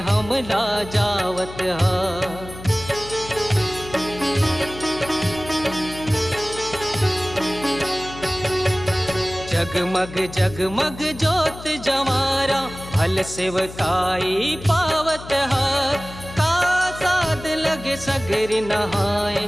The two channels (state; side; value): noise; left; hum, 14 dB below the sound